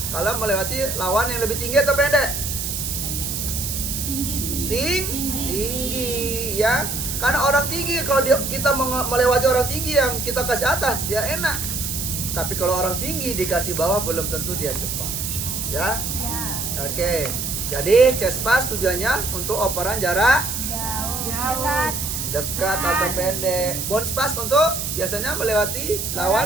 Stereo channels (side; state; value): right; noise; hiss, 3 dB below the sound